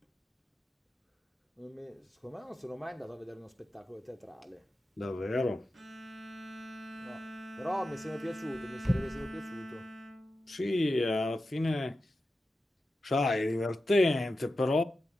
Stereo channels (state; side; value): normal; both; correlation 0.92